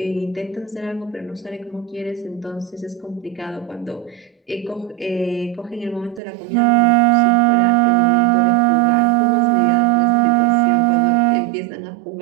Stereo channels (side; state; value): left; drops out; at 6.2 s